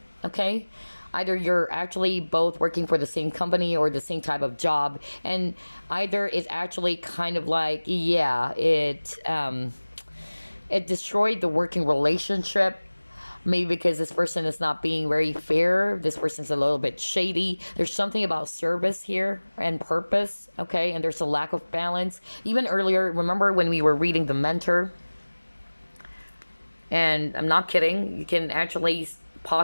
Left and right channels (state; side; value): inverted; both; correlation -1.00